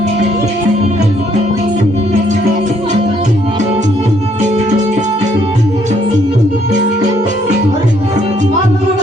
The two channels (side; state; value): both; normal; correlation 0.68